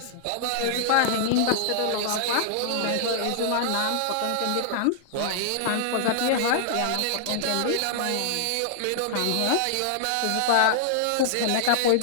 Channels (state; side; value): different; both; correlation -0.01